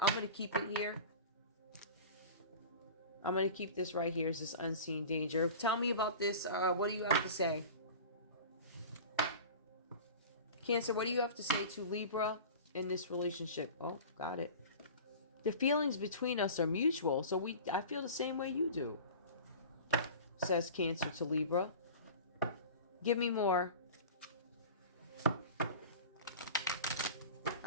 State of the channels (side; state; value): both; inverted; correlation -0.36